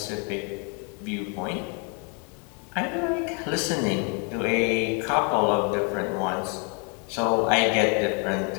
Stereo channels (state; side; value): quieter; right; 36.8 dB